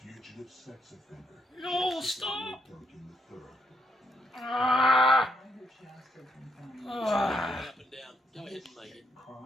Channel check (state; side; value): normal; both; correlation 0.77